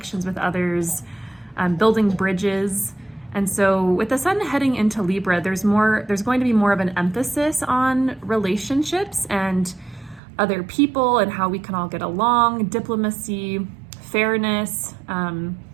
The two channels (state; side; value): drops out; left; at 10.2 s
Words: with others, building bridges. And so with the sun heading into Libra, there's going to be more of an emphasis on relationships and other people and how we can all get along, diplomacy, fairness,